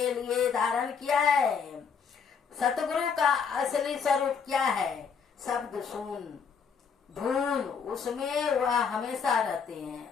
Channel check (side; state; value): right; quieter; 6.3 dB